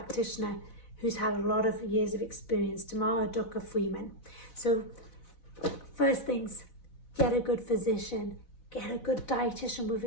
who's had a lot of years of experience, Tamara Ducker Freeman. So first things, get a good physician, get a good dietitian with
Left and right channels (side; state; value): right; late; 4.0 ms